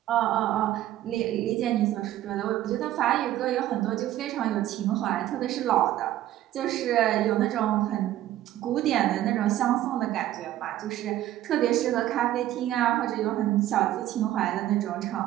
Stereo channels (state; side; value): quieter; left; 13.6 dB